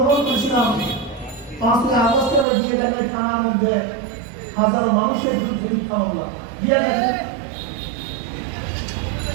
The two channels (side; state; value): left; drops out; at 2.5 s